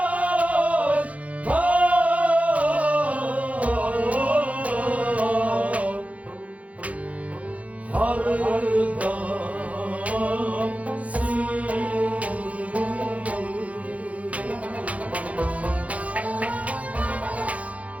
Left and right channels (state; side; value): late; left; 0.067 ms